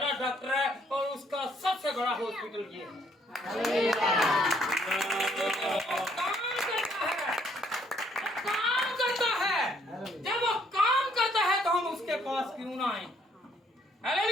डॉक्टर है और उसका सबसे बड़ा हॉस्पिटल ये है। काम करता है। जब वो काम करता है तो हम उसके पास क्यों ना आए?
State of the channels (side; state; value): both; normal; correlation 0.67